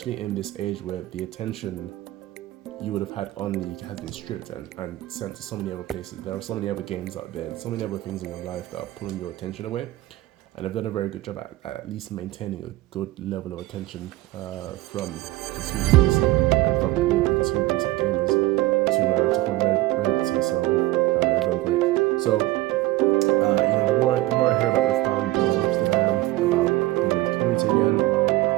in this age where the attention you would have had on League has been stripped and sent to so many other places. There are so many other games out there, so many other things in your life that are pulling your attention away. And they've done a very good job at least maintaining a good level of attention from consumers and from the consumer base of gamers to hold relevancy. So they've done great. So the more I hear about Riftbound, the more interested I am about being in the community again.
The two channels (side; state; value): left; quieter; 17.6 dB